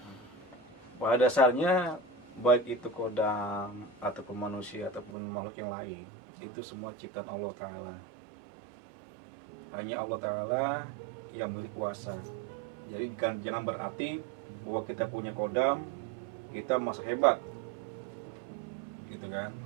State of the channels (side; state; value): left; drops out; at 5.2 s